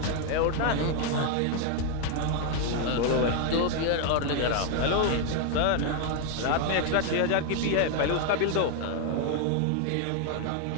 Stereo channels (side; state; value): both; different; correlation 0.00